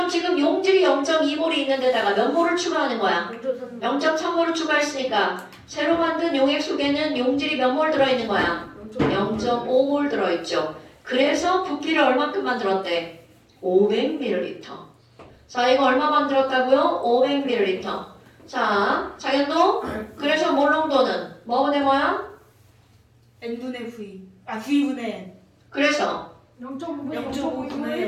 지금 용질이 0.2몰이 있는 데다가 몇 몰을 추가하는 거야? 0.3. 0.3몰을 추가했으니까 새로 만든 용액 속에는 용질이 몇 몰 들어있는 거야? 0.5몰 들어있죠. 그래서 부피를 얼마큼 만들었대? 500ml. 자 이거 얼마 만들었다고요? 500ml. 자 장현도 그래서 몰 농도는 뭐분의 뭐야? n분의 v. v분의 n. 그래서 0.5분의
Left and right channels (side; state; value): both; identical; correlation 1.00